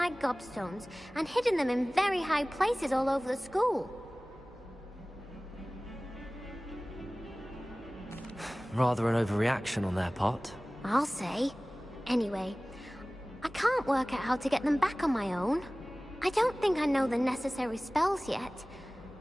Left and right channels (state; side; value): normal; both; correlation 0.98